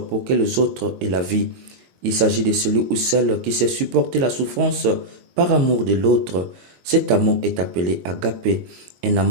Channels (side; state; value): left; late; 22 ms